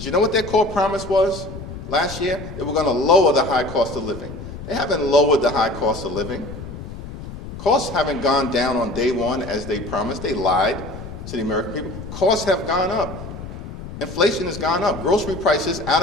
you know what their core promise was last year? They were going to lower the high cost of living. They haven't lowered the high cost of living. Costs haven't gone down on day one as they promised. They lied to the American people. Costs have gone up. Inflation has gone up. Grocery prices out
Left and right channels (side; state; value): left; noise; rumble, 11 dB below the sound